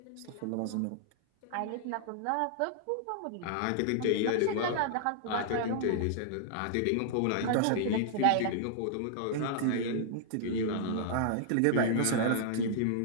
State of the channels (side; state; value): both; different; correlation -0.01